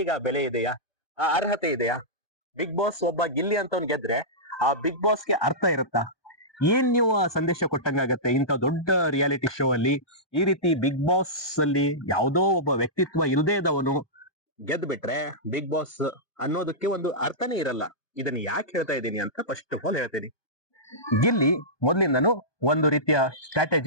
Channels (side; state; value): right; late; 1.2 ms